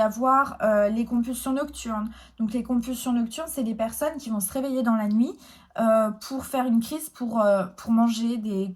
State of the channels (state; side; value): identical; both; correlation 1.00